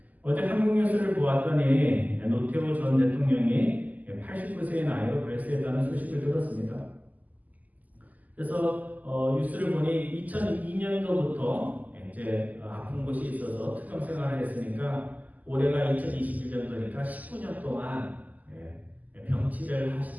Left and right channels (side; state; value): left; late; 0.079 ms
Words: 어제 한국 뉴스를 보았더니 노태우 전 대통령이 89세의 나이로 별세했다는 소식을 들었습니다. 그래서 뉴스를 보니 2002년도부터 이제 아픈 곳이 있어서 투병 생활을 했으니까 올해가 2021년도니까 19년 동안 병치를